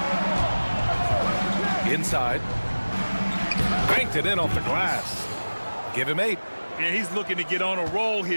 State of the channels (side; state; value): both; inverted; correlation -1.00